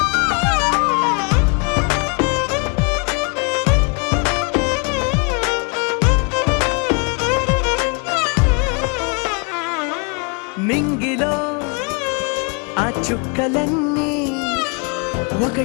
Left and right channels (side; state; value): right; quieter; 33.1 dB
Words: నింగిలో ఆ చుక్కలన్నీ